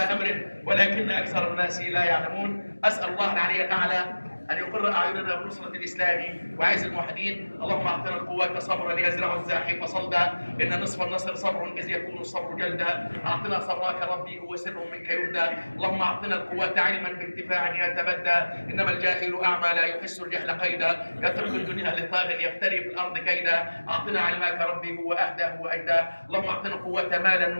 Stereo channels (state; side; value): inverted; both; correlation -1.00